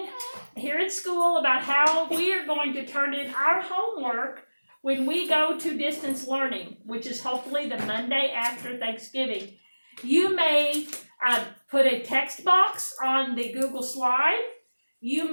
here at school about how we are going to turn in our homework when we go to distance learning, which is hopefully the Monday after Thanksgiving. You may put a text box on the Google slide. You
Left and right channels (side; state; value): both; inverted; correlation -1.00